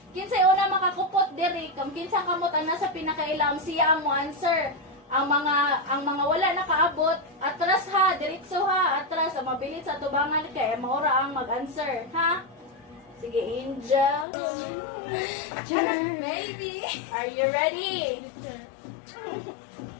una makakupot diri, kung kinsa kamot ang nasa pinakailam siya ang mo answer. ang mga wala nakaabot, atras ha, diretso ha, atras, ang mabilis sa tubangan kay maura ang mag-answer, ha? Sige, Angel. Maybe. Are you ready?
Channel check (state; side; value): drops out; right; at 14.2 s